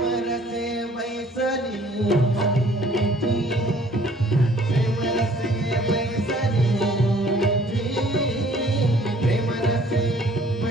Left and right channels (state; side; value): normal; both; correlation 0.57